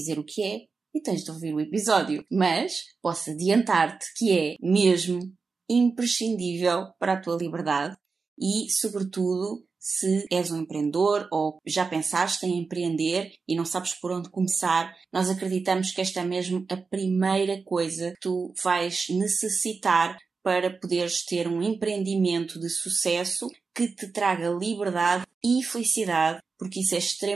o que é e tens de ouvir o episódio. Mas posso adiantar-te que é mesmo imprescindível para a tua liberdade e, sobretudo, se és um empreendedor ou já pensaste em empreender e não sabes por onde começar, nós acreditamos que esta é mesmo a primeira coisa que tu vais necessitar para poderes ter um empreendimento de sucesso que te traga liberdade e felicidade, porque isso é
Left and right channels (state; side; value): quieter; left; 4.6 dB